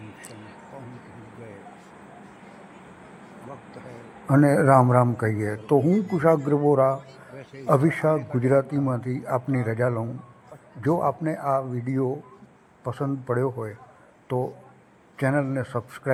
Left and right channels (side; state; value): both; identical; correlation 1.00